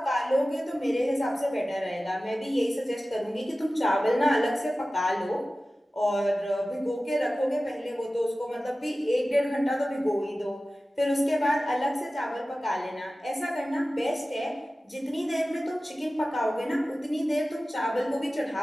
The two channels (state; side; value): normal; both; correlation 0.96